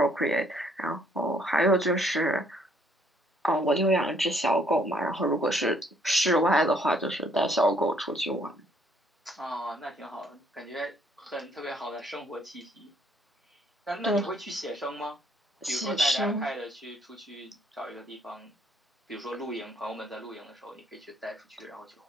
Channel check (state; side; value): normal; both; correlation 0.66